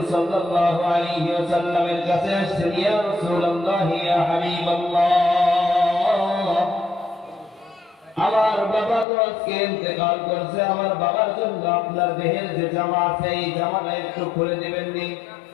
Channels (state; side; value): drops out; right; at 9.1 s